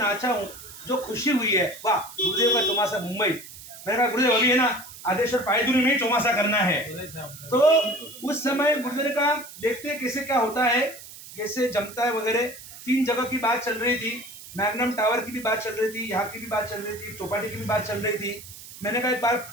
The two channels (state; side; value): noise; right; hiss, 16 dB below the sound